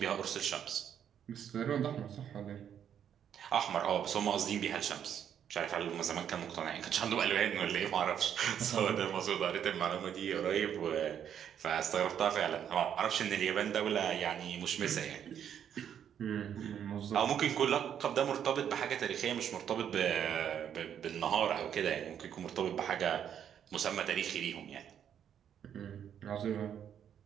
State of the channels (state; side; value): quieter; left; 9.0 dB